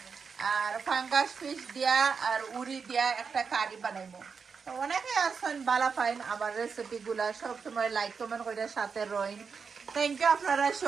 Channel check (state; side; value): quieter; left; 5.7 dB